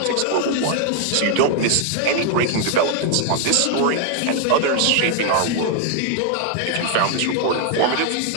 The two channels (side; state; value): both; different; correlation 0.00